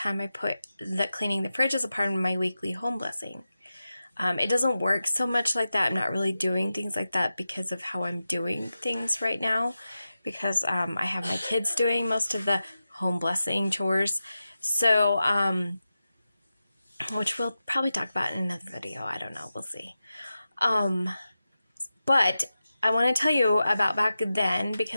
I put that cleaning the fridge as a part of my weekly home blessing. It doesn't work so much like that. I'm not really doing things like that because of how I'm doing things right now. Because I have my kids doing most of the home blessing chores. So, which we'll probably talk about in another video. I don't know. We'll see. But I want to tell you about back then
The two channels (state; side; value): inverted; both; correlation -0.92